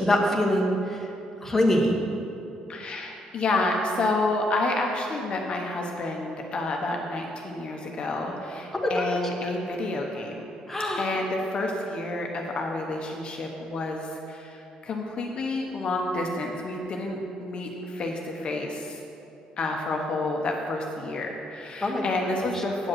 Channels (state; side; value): normal; both; correlation 0.75